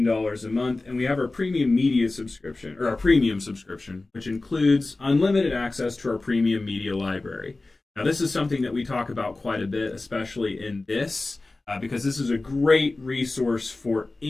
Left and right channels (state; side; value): quieter; right; 3.2 dB